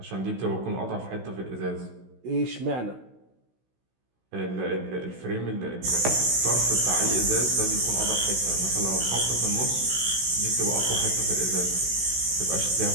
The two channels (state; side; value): late; left; 16 ms